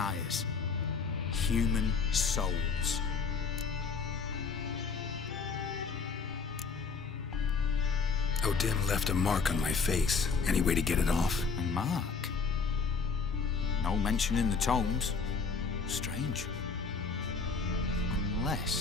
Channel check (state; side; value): quieter; right; 5.1 dB